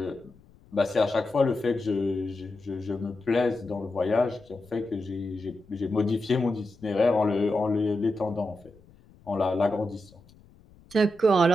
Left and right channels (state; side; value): noise; left; rumble, 27 dB below the sound